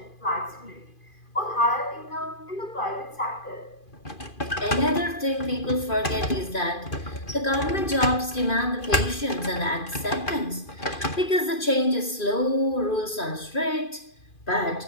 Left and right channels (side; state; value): right; late; 2.5 ms